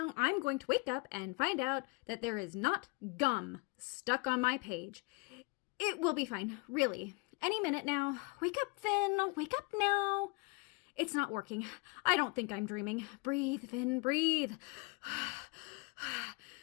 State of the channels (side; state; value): right; quieter; 28.6 dB